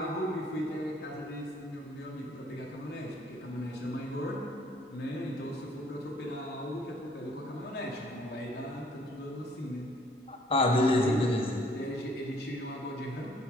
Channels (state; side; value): normal; both; correlation 0.61